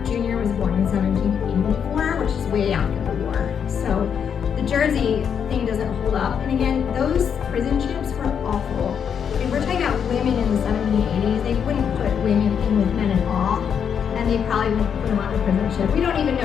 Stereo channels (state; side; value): quieter; right; 7.6 dB